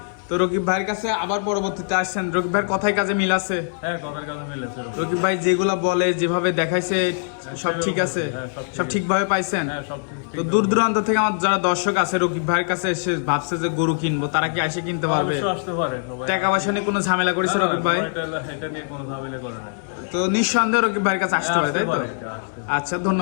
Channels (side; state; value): right; silent; 64 dB below the other